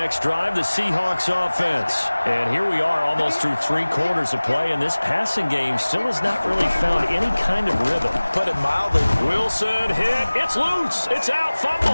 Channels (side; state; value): both; inverted; correlation -1.00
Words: drive, the Seahawks offense. And here we are almost through 3 quarters of play, and this passing game still has not really found any kind of rhythm. Put it mildly. Wilson hit. It's loose. It's out.